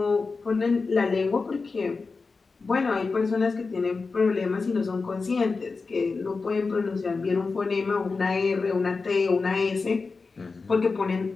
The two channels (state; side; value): quieter; right; 4.3 dB